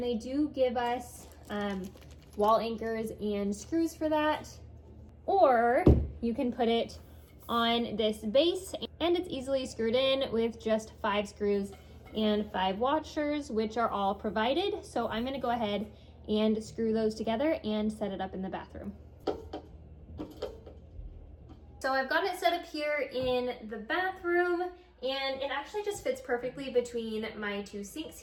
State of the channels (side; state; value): both; identical; correlation 1.00